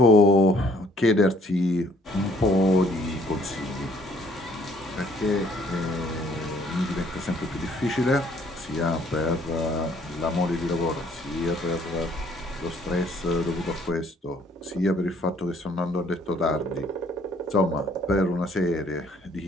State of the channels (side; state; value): both; normal; correlation 0.62